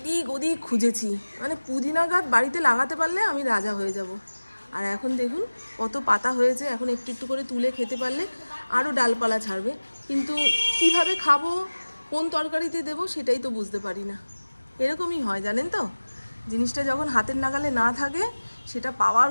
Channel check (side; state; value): both; inverted; correlation -1.00